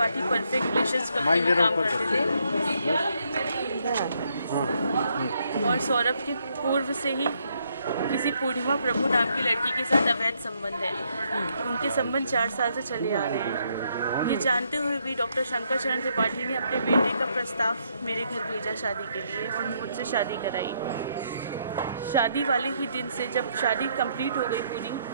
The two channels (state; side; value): inverted; both; correlation -0.74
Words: perfect relations company में काम करते थे और सौरभ के पूर्व से ही किसी पूर्णिमा प्रभु नाम की लड़की के साथ अवैध संबंध है। उनके संबंध 4 साल से चले आ रहे हैं। ये जानते हुए भी डॉक्टर शंकर चरण त्रिपाठी ने अपने बेटे का प्रस्ताव मेरे घर भेजा शादी के लिए और मुझसे शादी कराई। शादी वाले ही दिन से जब शादी कंप्लीट हो गई, पूरी